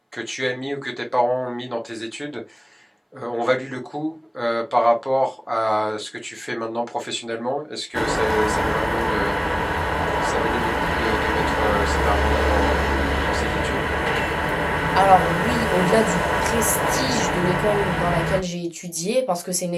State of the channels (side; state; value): both; identical; correlation 1.00